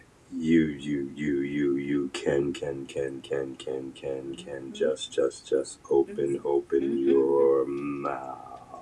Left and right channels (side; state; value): both; identical; correlation 1.00